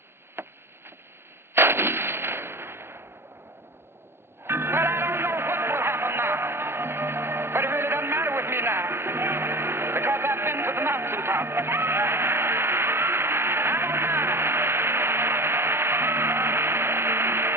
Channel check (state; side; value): late; left; 0.12 ms